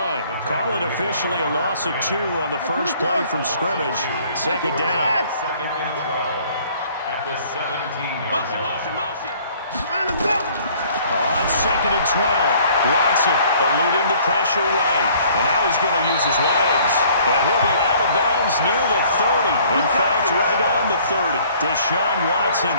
Call it officially a loss of 2 on the first play from scrimmage. Second down. Second and 12 at the 17-yard line. Motion. On second and 12, Watson eluding the pressure right. And now he's going to use his legs. And he'll be out of bounds near the 30. In fact, right on the 30. Deshaun Watson,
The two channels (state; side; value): inverted; both; correlation -0.57